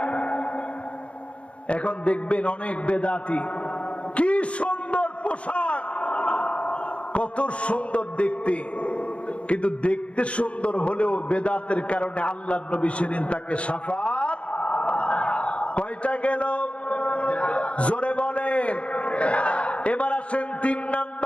এখন দেখবেন অনেক বেদাতী, কি সুন্দর পোশাক, কত সুন্দর দেখতে, কিন্তু দেখতে সুন্দর হলেও বেদাতের কারণে আল্লাহর নবী সেদিন তাকে শাফাত, কয়টা গেল? জোরে বলেন। এবার আসেন 3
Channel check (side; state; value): right; late; 0.061 ms